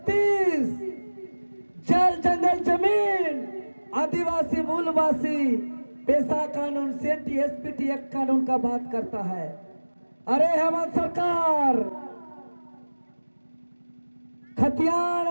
जल जंगल जमीन आदिवासी मूलवासी पेशा कानून सेंटी एसपीटी एक्ट कानून का बात करता है। अरे हेमंत सरकार खतियान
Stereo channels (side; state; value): both; inverted; correlation -1.00